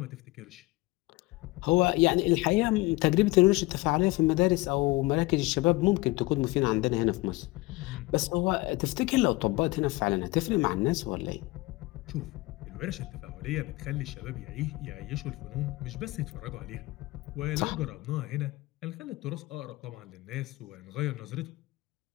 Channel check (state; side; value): quieter; right; 21.5 dB